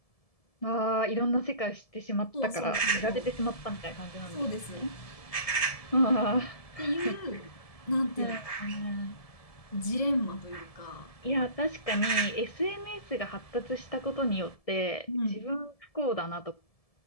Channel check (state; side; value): late; right; 1.7 ms